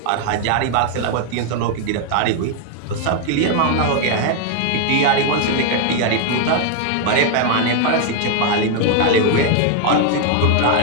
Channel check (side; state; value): both; different; correlation 0.00